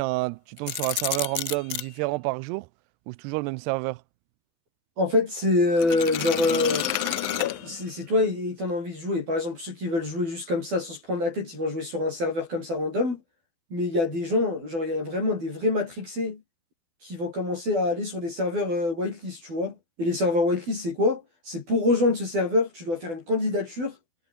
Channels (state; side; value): late; left; 12 ms